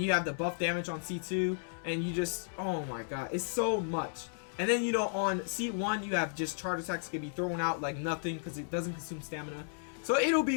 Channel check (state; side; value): silent; right; 55 dB below the other